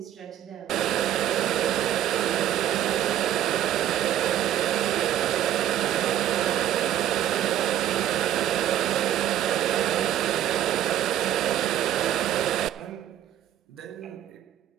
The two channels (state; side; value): quieter; left; 11.4 dB